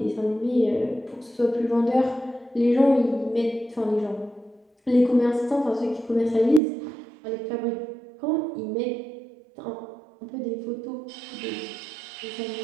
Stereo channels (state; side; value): drops out; left; at 6.6 s